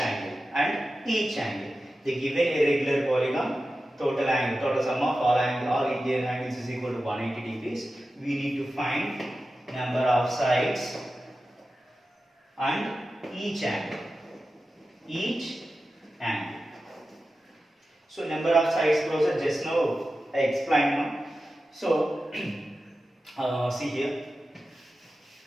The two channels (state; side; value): normal; both; correlation 0.93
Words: They given a regular polygon. Total sum of all interior angles is equal to 180 degrees. We need to find number of sides and each angle. So number of sides closer just now I explained now. So see here,